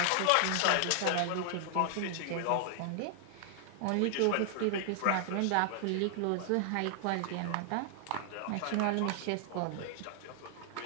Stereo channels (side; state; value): both; different; correlation 0.00